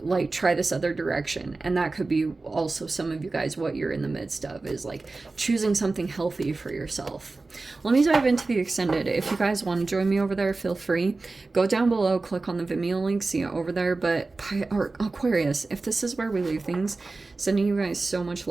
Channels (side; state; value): left; quieter; 3.5 dB